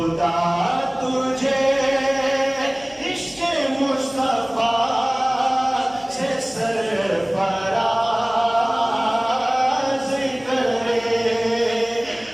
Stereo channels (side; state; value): right; noise; hum, 27 dB below the sound